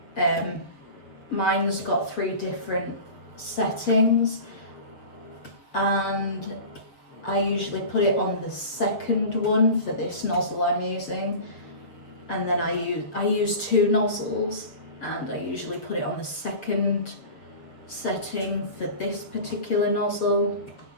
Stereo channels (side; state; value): right; late; 7.3 ms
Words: Mine's got 3 different settings, and I usually put it on the second one for this nozzle I'm using, and then I use 2 nozzles, and I usually put it on the second setting for this particular nozzle.